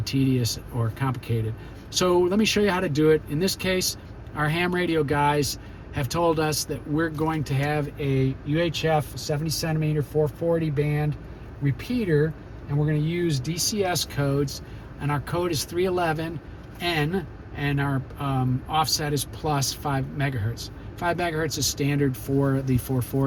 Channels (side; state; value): both; identical; correlation 1.00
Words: tedious or complicated. So let me show you how to do it. In this case, our ham radio guys have told us that we're going to have a UHF 70 centimeter 440 band repeater, and we're going to use DCS codes, and our code is 311N, and our offset is plus 5 megahertz. 5 megahertz is standard for the